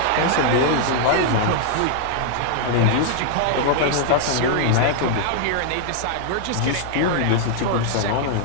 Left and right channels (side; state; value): both; different; correlation -0.01